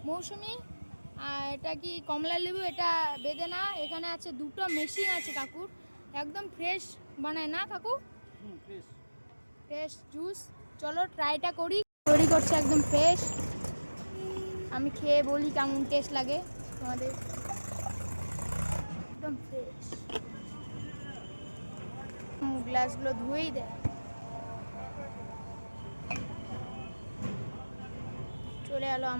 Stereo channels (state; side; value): inverted; both; correlation -1.00